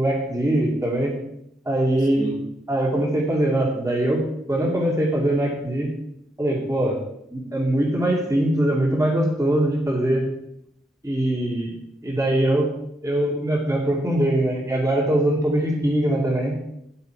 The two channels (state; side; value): normal; both; correlation 0.79